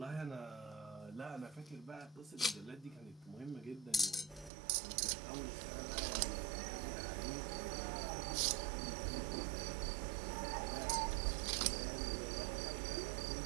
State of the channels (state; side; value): drops out; left; at 4.5 s